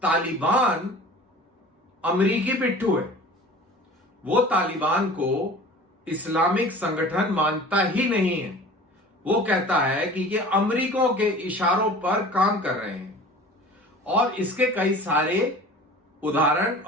तालिबान अमेरिकी पिट्ठू है। वो तालिबान को इस्लामिक संगठन मानता ही नहीं है। वो कहता है कि ये अमेरिकों के इशारों पर काम कर रहे हैं और इसके कई सारे उदाहरण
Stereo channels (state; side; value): normal; both; correlation 0.42